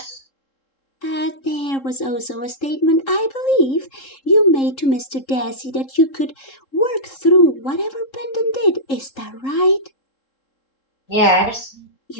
There was also a statement, I believe, you made to Mr. Dassey that you could work through whatever Brendan did. Is that right? Yes.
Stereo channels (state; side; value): late; right; 3.7 ms